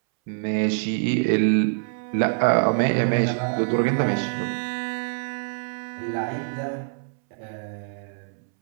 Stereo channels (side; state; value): left; silent; 62 dB below the other